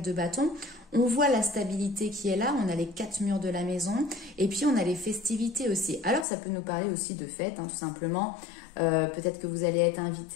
de bâton, on voit la stabilité qui est là, on a les 4 murs de la maison et puis on a les festivités aussi. Alors ça peut nous parler aussi de fêtes, hein, tout simplement. Peut-être que vous allez être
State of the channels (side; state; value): right; drops out; at 6.2 s